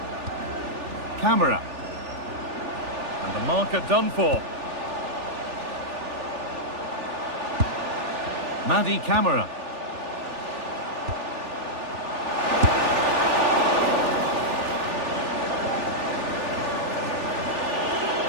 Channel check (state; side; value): late; left; 3.4 ms